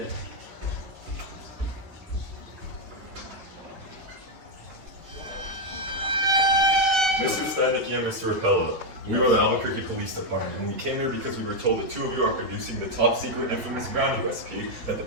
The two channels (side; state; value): left; late; 6.6 ms